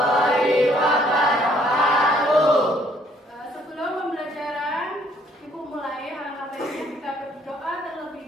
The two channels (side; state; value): both; normal; correlation 0.64